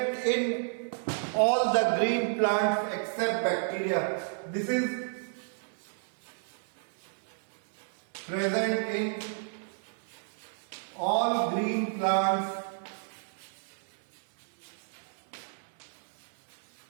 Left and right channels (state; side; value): silent; left; digital silence